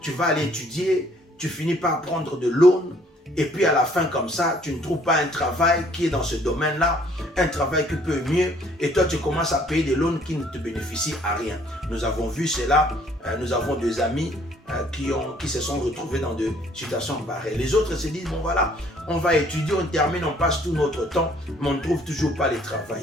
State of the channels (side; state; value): both; normal; correlation 0.61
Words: Tu vas aller étudier, tu finis par prendre de l'aune et puis à la fin comme ça, tu ne trouves pas un travail qui est dans ce domaine-là, un travail qui peut mieux et toi tu commences à payer des loans qui ne te bénéficient à rien. Nous avons vu cela, nous avons des amis qui se sont retrouvés dans des situations pareilles. Les autres se disent, bon voilà, on va étudier, on termine, on passe tout notre temps, mais on ne trouve toujours pas le